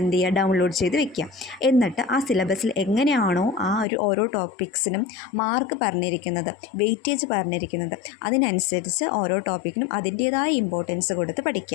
ചെയ്യുക, ഡൗൺലോഡ് ചെയ്ത് വെക്കുക. എന്നിട്ട് ആ സിലബസിൽ എങ്ങനെയാണോ ആ ഓരോ ടോപ്പിക്സിനും മാർക്ക് പറഞ്ഞിരിക്കുന്നത്, വെയിറ്റേജ് പറഞ്ഞിരിക്കുന്നത്, അതിനനുസരിച്ച് ഓരോ ടോപ്പിക്കിനും അതിൻ്റേതായ ഇമ്പോർട്ടൻസ് കൊടുത്ത്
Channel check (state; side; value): drops out; right; at 3.9 s